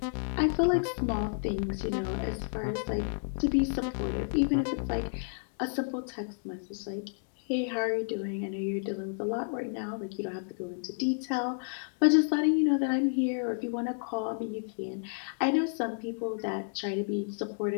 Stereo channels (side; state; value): right; silent; digital silence